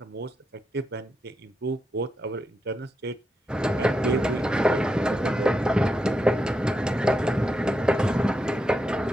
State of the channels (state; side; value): normal; both; correlation 0.85